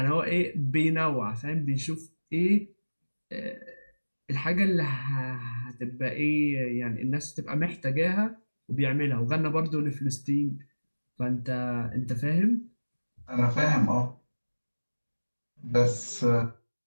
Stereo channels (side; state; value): both; inverted; correlation -1.00